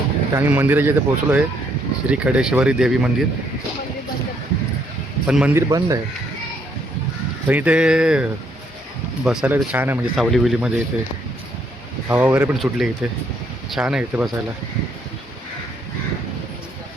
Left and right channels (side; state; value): both; normal; correlation 0.70